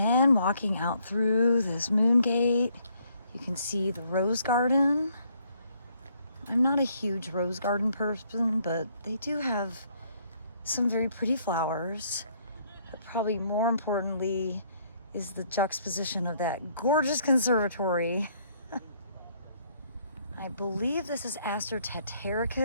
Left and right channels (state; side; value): inverted; both; correlation -0.67